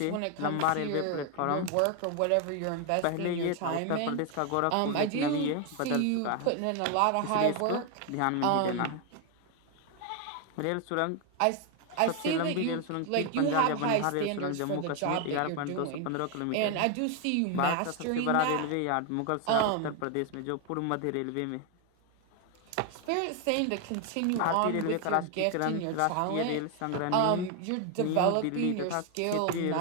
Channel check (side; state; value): both; different; correlation 0.01